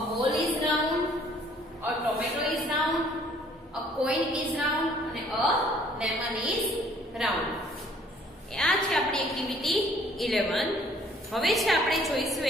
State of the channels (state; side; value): normal; both; correlation 0.59